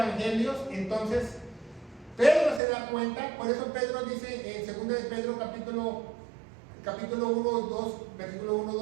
entonces Pedro se da cuenta. Por eso Pedro dice en 2 de Pedro capítulo 1, 2, versículo 1,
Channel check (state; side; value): drops out; left; at 2.6 s